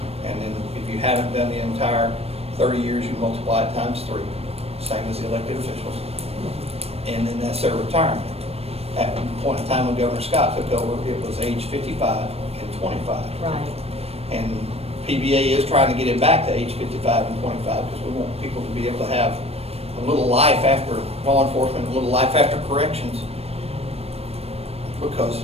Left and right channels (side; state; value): left; late; 0.29 ms